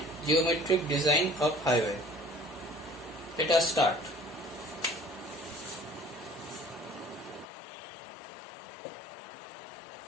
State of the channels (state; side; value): drops out; right; at 7.5 s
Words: geometric design of highway. Let us start.